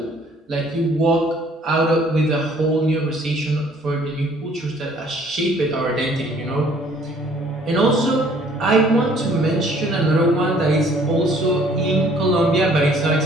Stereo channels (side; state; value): both; normal; correlation 0.58